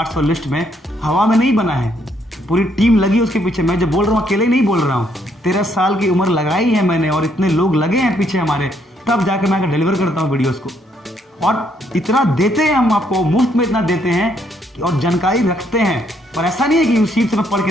लिस्ट में, हवा में नहीं बना है, पूरी टीम लगी उसके पीछे। मैं जो बोल रहा हूँ अकेले नहीं बोल रहा हूँ, 13 साल की उम्र लगाई है मैंने और इतने लोग लगे हैं पीछे हमारे, तब जाकर मैं डिलीवर करता हूँ वीडियोस को। और इतना देते हैं हम आपको, मुफ्त में इतना देते हैं और जानकारी रखते हैं। पर ऐसा नहीं है कि यूसीड से मैं पढ़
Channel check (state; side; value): normal; both; correlation 0.71